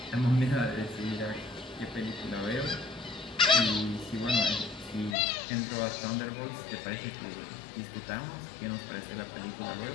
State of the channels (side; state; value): right; drops out; at 5.2 s